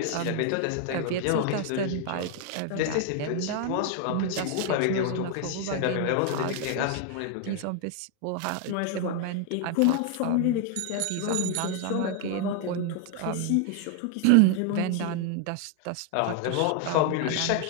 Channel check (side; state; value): both; different; correlation 0.00